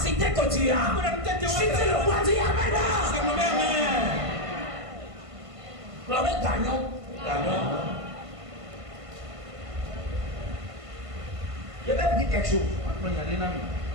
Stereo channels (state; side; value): late; left; 1.5 ms